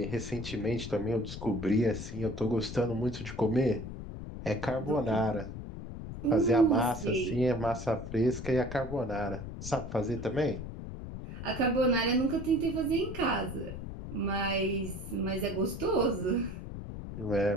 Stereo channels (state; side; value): noise; left; rumble, 8 dB below the sound